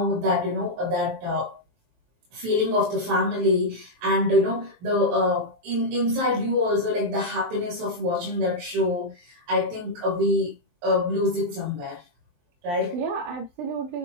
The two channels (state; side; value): late; left; 23 ms